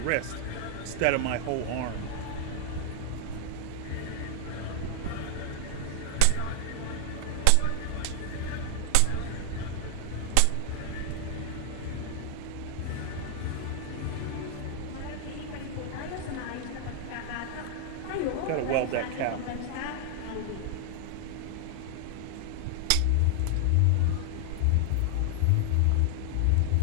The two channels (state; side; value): different; both; correlation 0.00